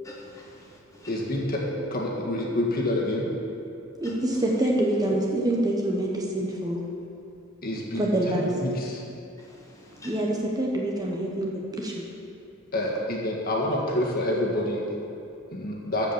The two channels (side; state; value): both; normal; correlation 0.50